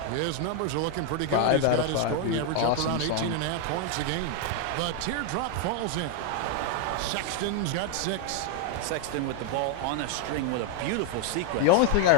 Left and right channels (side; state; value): both; different; correlation 0.01